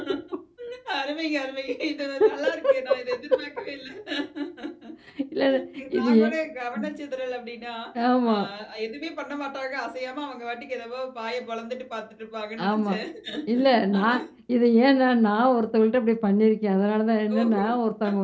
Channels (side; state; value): both; identical; correlation 1.00